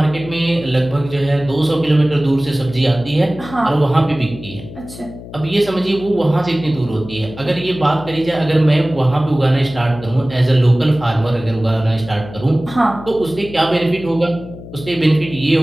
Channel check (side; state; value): left; noise; hum, 14 dB below the sound